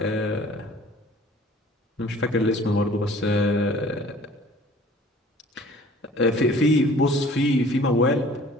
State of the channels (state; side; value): normal; both; correlation 0.50